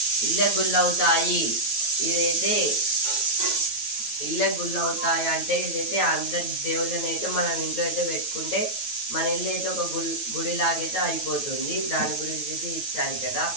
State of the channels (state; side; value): late; right; 9.2 ms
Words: ఇళ్ళ గుల్లవుతాయి. ఇదైతే ఇళ్ళ గుల్లవుతాయి అంటే ఇదైతే అందరి దేవుళ్ళని అయితే మనం ఇంట్లో అయితే పెట్టుకుంటే మన ఇల్లు అయితే ఒక గుడిలాగైతే అయిపోతుంది. దాని గురించి అయితే ఇచ్చారు కదా.